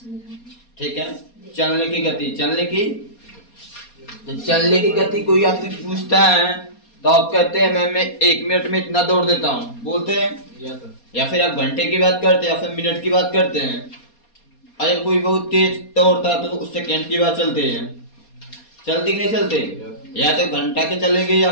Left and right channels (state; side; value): late; right; 4.2 ms